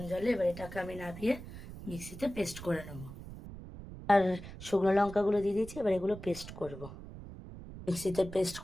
জলে। এবার এটাকে আমি নামিয়ে মিক্সিতে পেস্ট করে নেবো। আর শুকনো লঙ্কাগুলো দিয়ে দিয়েছি, এবার এগুলো পেস্ট করব। মিক্সিতে পেস্ট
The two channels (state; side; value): noise; right; rumble, 13 dB below the sound